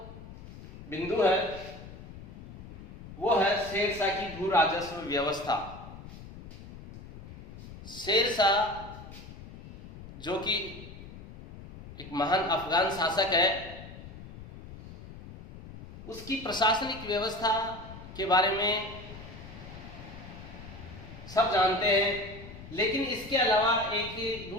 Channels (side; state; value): left; noise; rumble, 15 dB below the sound